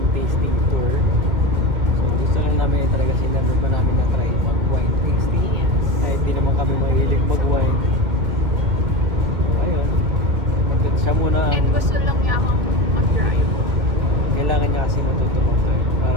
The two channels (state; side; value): late; left; 2.1 ms